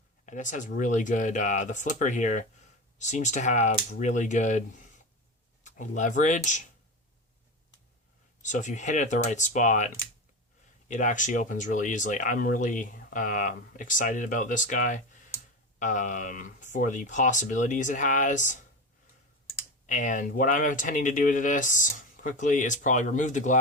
And this has really good, the flipper here seems to have really good leverage. So if you hit it at the right spot, it actually opens really easily. I'm really excited about this guy for the possibilities it has. And what I'm intending to do to this quickly is probably remove the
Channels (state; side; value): normal; both; correlation 0.23